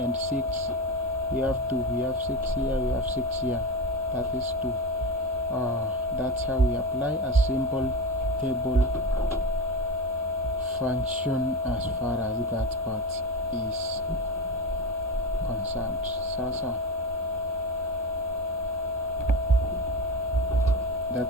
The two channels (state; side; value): normal; both; correlation 0.21